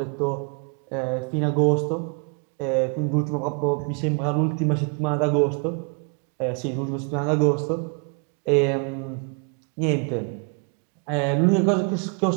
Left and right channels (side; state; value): left; quieter; 38.8 dB